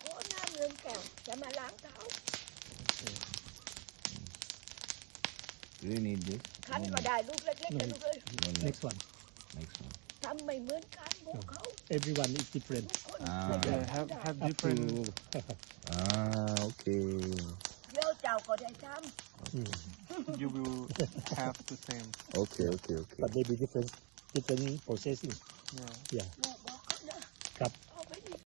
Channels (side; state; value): left; quieter; 33.2 dB